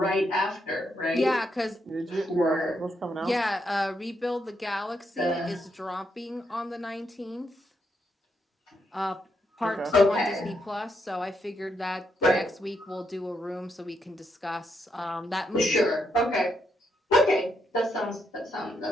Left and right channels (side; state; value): both; normal; correlation 0.79